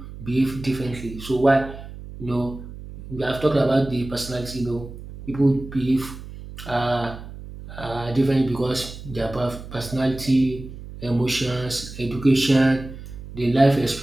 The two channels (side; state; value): right; noise; hum, 13 dB below the sound